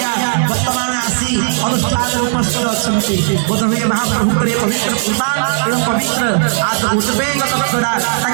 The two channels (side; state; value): left; silent; 66 dB below the other